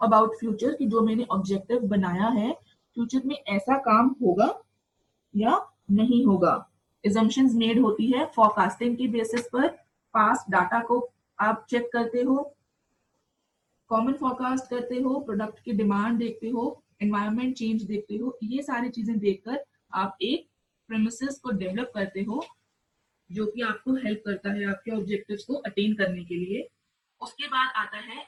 अबाउट फ्यूचर कि जो मैंने ऑब्जेक्टिव बनाया है फ्यूचर में ऐसा काम होगा या नहीं होगा। एजम्पशंस मेड होती है फोरकास्टिंग की बेसिस पर। पास्ट डाटा को आप चेक करते हो, कॉमन फोरकास्ट करते हो, प्रोडक्ट की डिमांड देखते हो, एनवायरनमेंट चेंज देखते हो। ये सारी चीजें देखकर आप एक प्रेमिसेस को डेवलप करते हो जो कि आपको हेल्प करता है आपके ऑब्जेक्टिव्स को अटेन करने के लिए। उसके बाद आता है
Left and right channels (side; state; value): both; identical; correlation 1.00